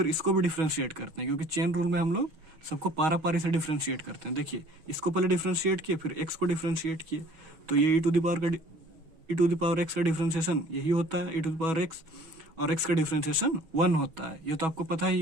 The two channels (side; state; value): left; late; 6.2 ms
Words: इसको भी डिफ्रेंशिएट करते हैं, क्योंकि चेन रूल में हम लोग सबको पारा पारी से डिफ्रेंशिएट करते हैं। देखिए इसको पहले डिफ्रेंशिएट किए फिर x को डिफ्रेंशिएट किए, तो ये e to the power x का डिफ्रेंशिएशन यही होता है e to the power x, और x का डिफ्रेंशिएशन 1 होता है, ये तो आपको पता ही